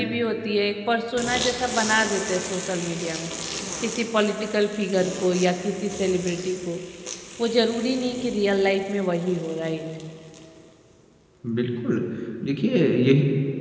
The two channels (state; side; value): identical; both; correlation 1.00